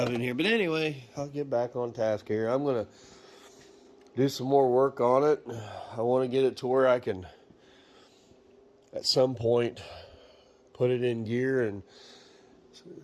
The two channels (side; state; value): both; identical; correlation 1.00